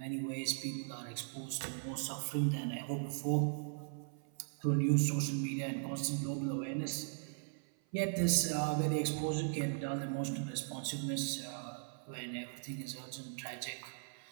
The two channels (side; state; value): left; silent; 52 dB below the other